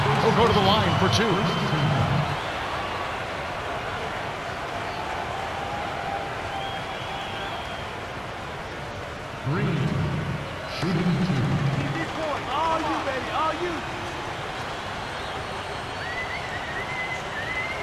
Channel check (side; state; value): both; identical; correlation 1.00